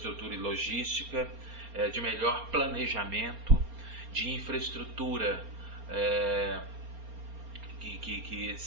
e logística, de melhor planejamento, de infraestrutura que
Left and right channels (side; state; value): left; late; 4.3 ms